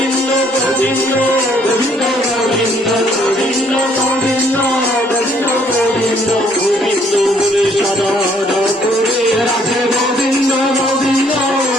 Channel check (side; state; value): both; normal; correlation 0.65